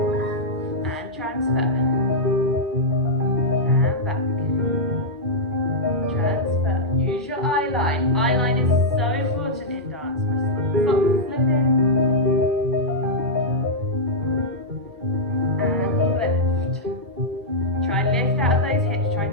And transfer. And back. Transfer. Use your eye line. Eye line is so important in dance. My socks are slipping. And lift. Try and lift out of those hips. Try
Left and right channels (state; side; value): normal; both; correlation -0.08